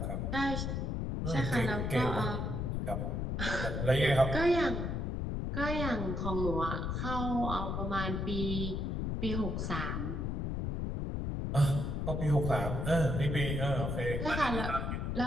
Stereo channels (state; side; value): noise; left; rumble, 1 dB below the sound